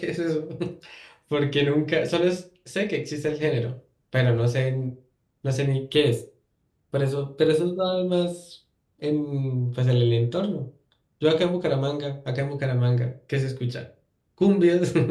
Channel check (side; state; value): both; identical; correlation 1.00